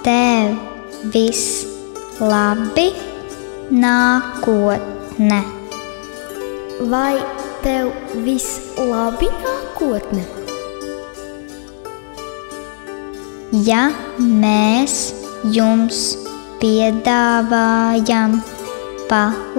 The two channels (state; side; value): silent; right; digital silence